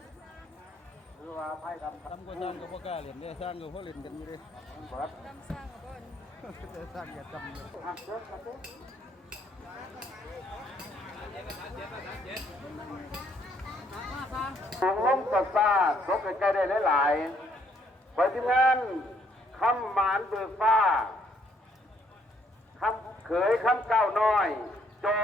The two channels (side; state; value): both; normal; correlation 0.69